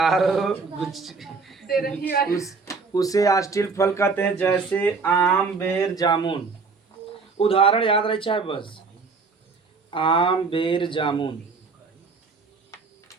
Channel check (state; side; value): quieter; left; 4.5 dB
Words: हो उसे आस्टील फल कहते हैं, जैसे आम बेर जामुन। उदाहरण याद रहे चाहे बस, आम बेर जामुन,